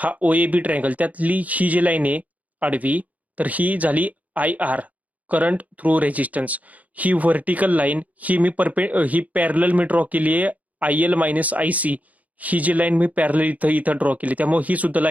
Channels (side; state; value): left; late; 0.074 ms